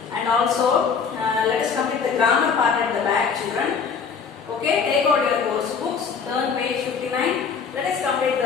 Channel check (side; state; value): right; quieter; 5.9 dB